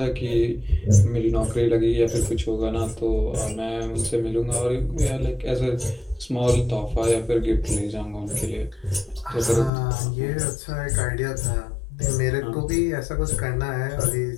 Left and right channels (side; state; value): right; drops out; at 9.7 s